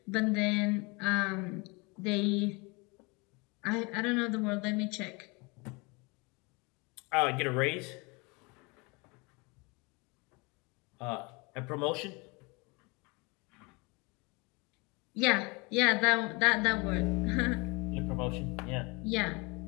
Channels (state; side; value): quieter; right; 28.0 dB